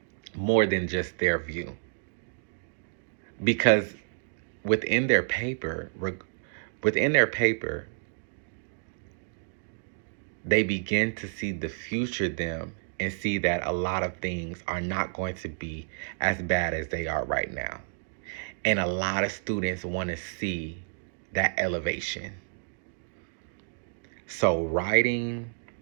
more than just their view. Because within their paper, within their paper, they begin to see the future them and see that a lot of things are not going to be as bad as they are right now. And a lot of students want to see that elevation. So writing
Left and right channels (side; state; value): left; silent; digital silence